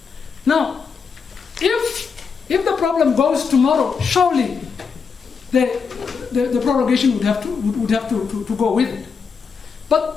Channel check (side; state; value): right; quieter; 5.8 dB